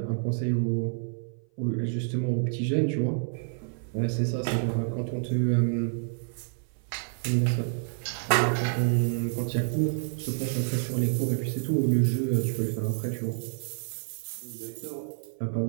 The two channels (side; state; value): left; silent; 56 dB below the other